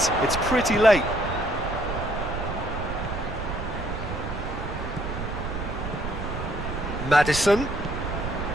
pretty late. Maddison.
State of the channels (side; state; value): right; noise; rumble, 5 dB below the sound